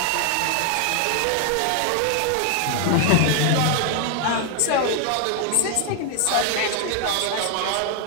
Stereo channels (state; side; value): different; both; correlation 0.01